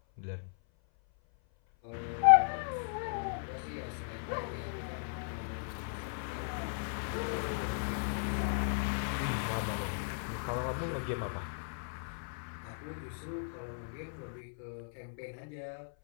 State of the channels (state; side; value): silent; right; 54 dB below the other